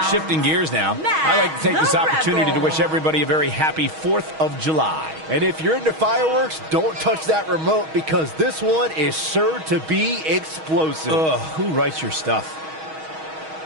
Shifting gears now, I'd like to take this opportunity to wish everybody a very happy 4th of July. And if you're into fireworks, don't touch that remote because this one is sure to be explosive. Ugh, who writes your stuff?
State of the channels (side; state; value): left; late; 6.3 ms